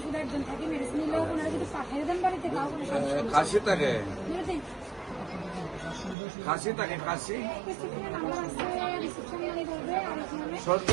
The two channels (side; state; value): left; drops out; at 6.2 s